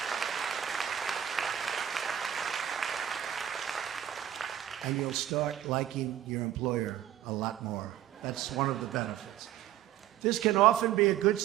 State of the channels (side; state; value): left; quieter; 11.5 dB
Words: And you'll start liking your employer a lot more. That's one of the benefits. This can often be a good